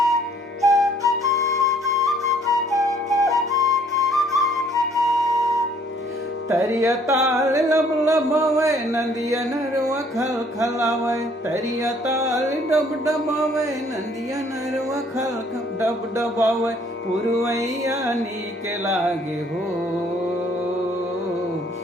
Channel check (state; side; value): normal; both; correlation 0.61